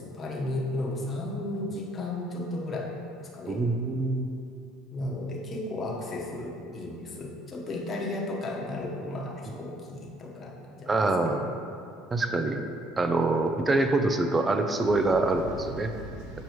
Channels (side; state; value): both; normal; correlation 0.68